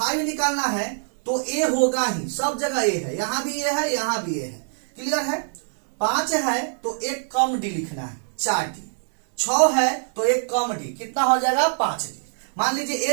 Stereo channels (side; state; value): left; silent; digital silence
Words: निकालना है तो A होगा ही, सब जगह A है, यहां भी A है, यहां भी A है। क्लियर है, 5 है तो 1 कम D लिखना है, 4D। 6 है तो 1 कम D, कितना हो जाएगा, 5D। मान लीजिए